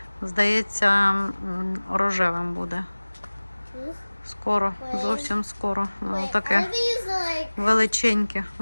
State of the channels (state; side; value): inverted; both; correlation -1.00